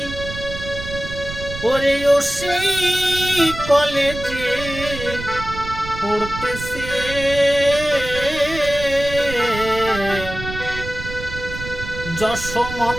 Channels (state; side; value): noise; right; rumble, 10 dB below the sound